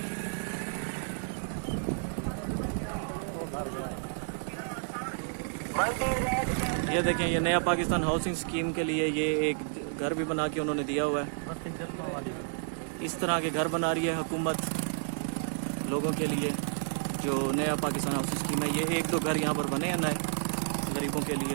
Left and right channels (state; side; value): silent; left; digital silence